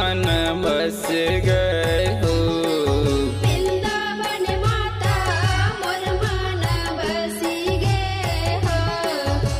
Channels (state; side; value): identical; both; correlation 1.00